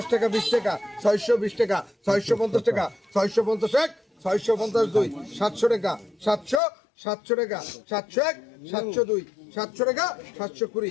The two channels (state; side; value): drops out; right; at 6.6 s